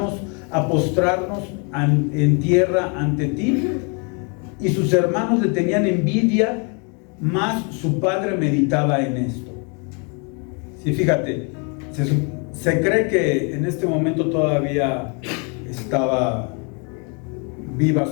a postrarnos en tierra ante ti? Y sus hermanos le tenían envidia, mas su padre meditaba en esto. Sí, fíjate, se cree que en este momento todavía estaba viva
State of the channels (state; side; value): quieter; right; 35.2 dB